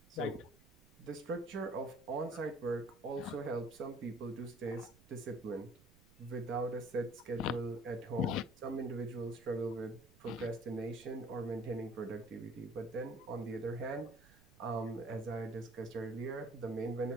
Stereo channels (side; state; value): right; noise; rumble, 24 dB below the sound